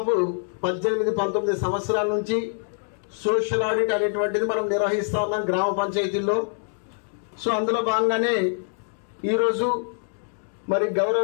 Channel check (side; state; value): right; silent; 59 dB below the other